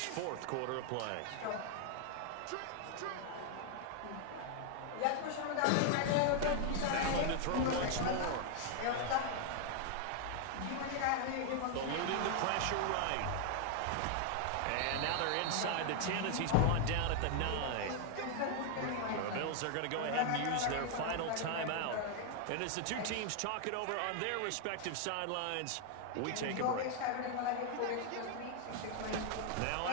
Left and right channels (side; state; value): both; different; correlation 0.00